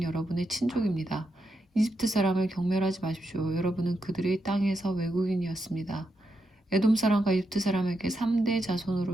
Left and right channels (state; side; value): normal; both; correlation 0.84